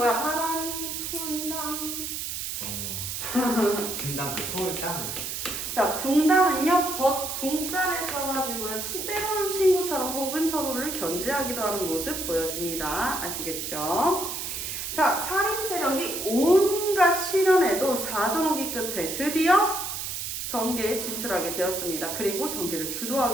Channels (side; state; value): right; noise; hiss, 4 dB below the sound